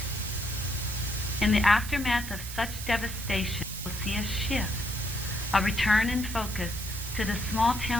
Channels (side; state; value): right; noise; hiss, 10 dB below the sound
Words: In the aftermath of such devastation, we'll see a shift, a return in focus to the small